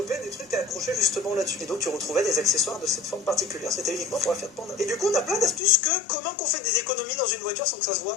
des trucs à accrocher justement là-dessus. Et donc tu retrouvais des accessoires de cette forme particulière, c'était uniquement pour la Fiat Panda. Et du coup, on a plein d'astuces que comment qu'on fait des économies dans une voiture sans que ça se voit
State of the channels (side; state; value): right; drops out; at 5.6 s